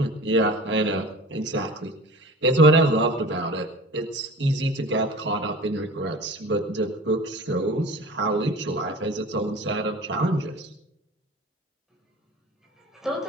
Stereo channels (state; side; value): normal; both; correlation 0.39